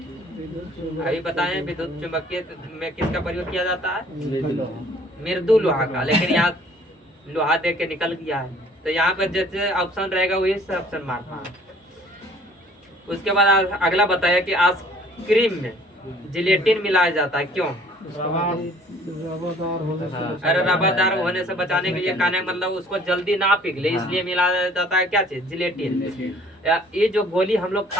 अभी बताएं विद्युत चुंबकीय में किसका प्रयोग किया जाता है? मृदु लोहा का। लेकिन यहाँ लोहा दे के निकल गया है, तो यहाँ पर जैसे ऑप्शन रहेगा वही से ऑप्शन मारना है। उसके बाद अगला बताया कि आइसक्रीम में जिलेटिन मिलाया जाता है, क्यों? अरे रबादार होने से बचाने के लिए, कहने मतलब उसको जल्दी ना पिघले इसलिए मिलाया जाता है क्या चीज? जिलेटिन। ये जो गोली हम लोग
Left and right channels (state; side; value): normal; both; correlation 0.55